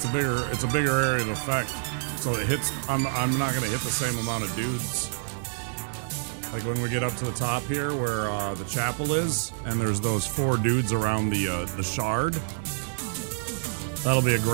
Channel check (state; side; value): silent; left; digital silence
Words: a bigger area of effect. So it hits I'm not gonna hit the same amount of dudes. Like when we get up to the top here where the chapel is, and there's those 4 dudes around the shard. That'll be a